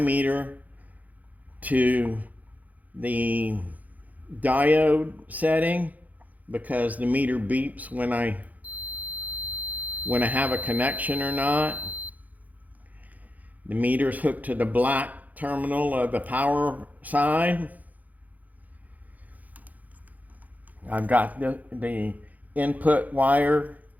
to the diode setting because the meter beeps when I have a connection or not. The meter's hooked to the black terminal of the power side. I've got the input wire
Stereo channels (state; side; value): late; left; 0.079 ms